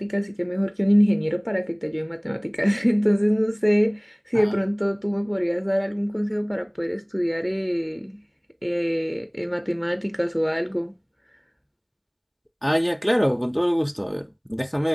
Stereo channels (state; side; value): identical; both; correlation 1.00